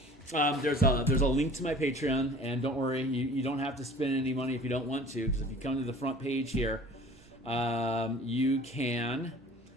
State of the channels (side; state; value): right; noise; hum, 27 dB below the sound